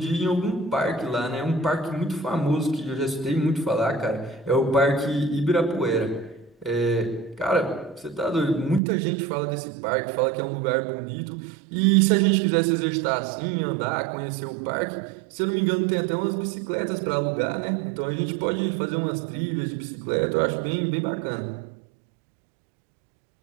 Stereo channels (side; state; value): left; drops out; at 8.8 s